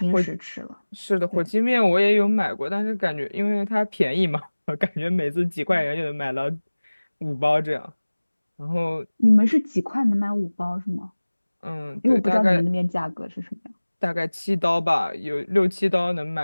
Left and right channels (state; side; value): inverted; both; correlation -1.00